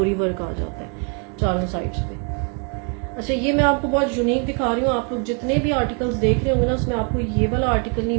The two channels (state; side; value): quieter; left; 36.8 dB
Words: वर्क आ जाता है चारों साइड्स पे। अच्छा, ये मैं आपको बहुत यूनिक दिखा रही हूँ। आप लोग जितने भी आर्टिकल्स देख रहे होंगे ना, उसमें आपको ये वाला आर्टिकल नहीं